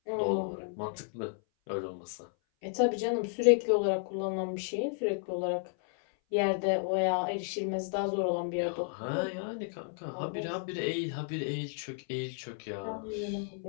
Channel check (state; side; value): silent; right; 56 dB below the other